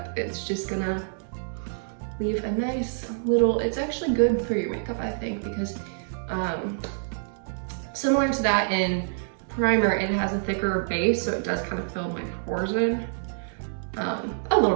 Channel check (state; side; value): silent; left; digital silence